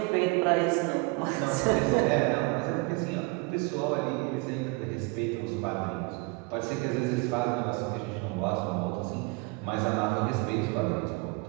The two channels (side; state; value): left; quieter; 28.4 dB